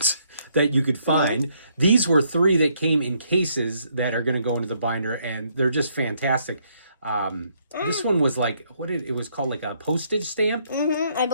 that you could find. These were 3 that came in cases that are going to go into the binder, and they're just fantastic. This one was like, it was called like a postage stamp? I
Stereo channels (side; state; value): both; inverted; correlation -0.71